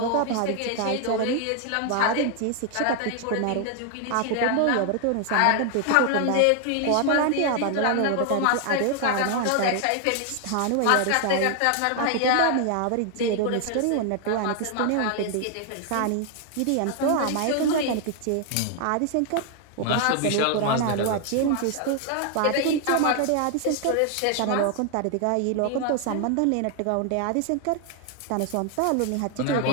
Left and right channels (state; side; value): different; both; correlation 0.00